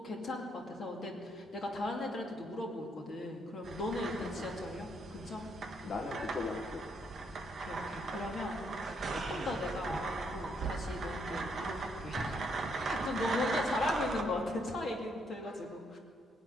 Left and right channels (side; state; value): both; normal; correlation 0.73